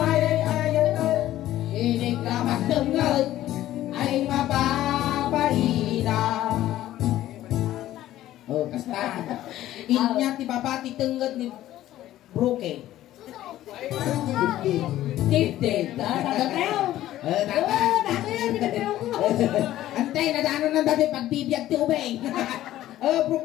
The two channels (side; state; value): right; quieter; 13.9 dB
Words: ayatan. Inigamak tengel ay mababahina. Oh, kasta. Inya ti babati tengel ni Broke. Tifted. Tagateo. Tata. Dato yan, tagateo ko. Antay, nadano ng dati pagbibiyag ti ubay.